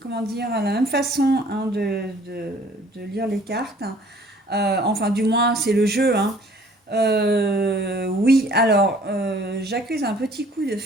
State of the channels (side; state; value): both; normal; correlation 0.55